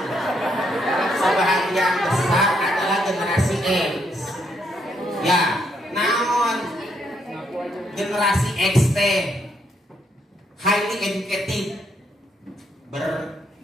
sebahagian besar adalah generasi X. Ya, namun generasi X highly educated,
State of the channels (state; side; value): normal; both; correlation 0.74